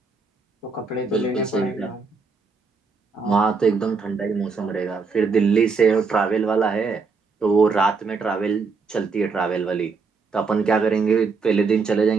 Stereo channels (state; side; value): quieter; left; 4.7 dB